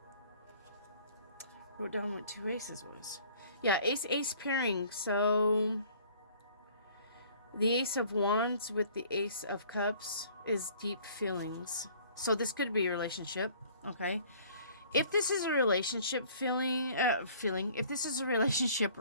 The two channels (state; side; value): inverted; both; correlation -0.54